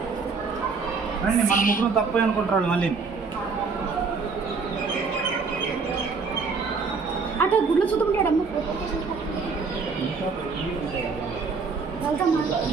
రండి, మన ముగ్గురు తప్పు అనుకుంటారు మళ్ళీ. అటు గుడ్లు చూద్దాం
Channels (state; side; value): quieter; left; 4.8 dB